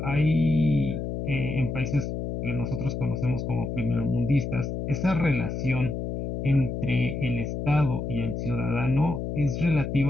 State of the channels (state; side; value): noise; left; hum, 4 dB below the sound